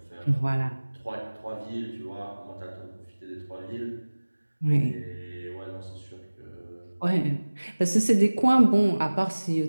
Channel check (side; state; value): both; inverted; correlation -1.00